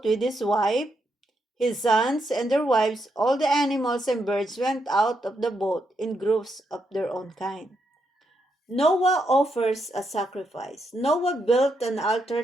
with his wife, his sons, and their wives. All the animals and birds went out of the boat in groups of their own kind. Noah offers a sacrifice. Noah built an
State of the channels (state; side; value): normal; both; correlation 0.80